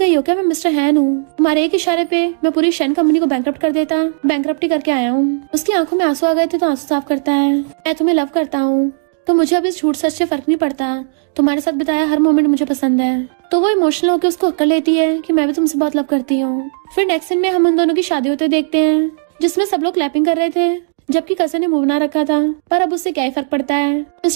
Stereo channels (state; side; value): silent; left; digital silence